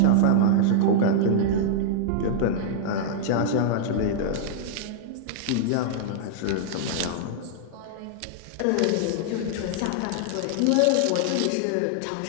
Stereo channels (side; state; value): both; different; correlation -0.02